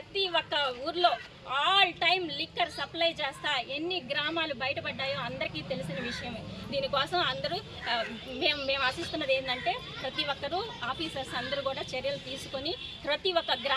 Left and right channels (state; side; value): identical; both; correlation 1.00